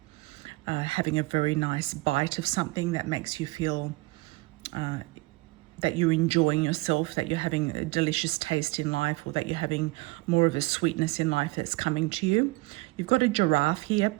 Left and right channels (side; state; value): left; quieter; 23.0 dB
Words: having a very nice bite of something that makes you feel that you're enjoying yourself, that you're having a delicious taste in life, or that you're having more of a sweetness in life that's coming to you. You've got a giraffe here